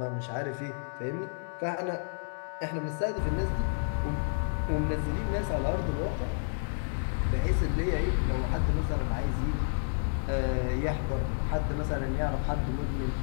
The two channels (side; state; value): right; silent; 57 dB below the other